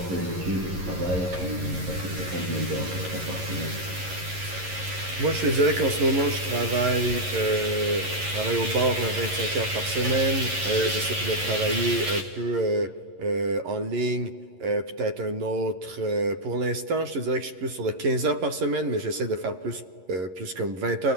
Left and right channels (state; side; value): late; left; 11 ms